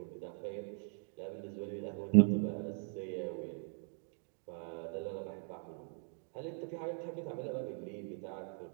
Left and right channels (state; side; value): silent; left; 51 dB below the other